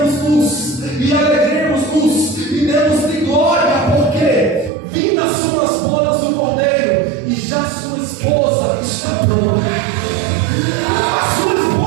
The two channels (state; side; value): drops out; left; at 4.7 s